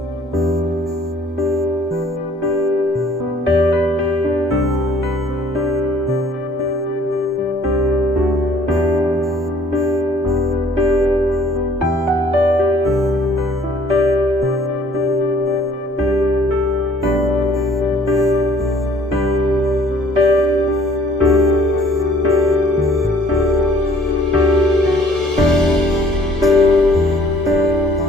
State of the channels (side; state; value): both; normal; correlation 0.56